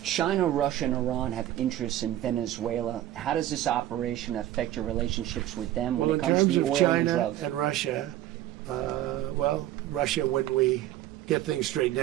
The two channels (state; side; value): quieter; left; 13.4 dB